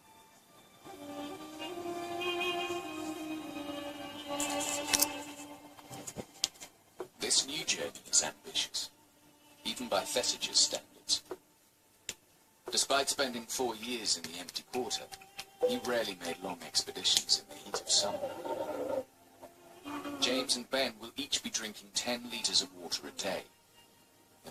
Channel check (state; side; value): identical; both; correlation 1.00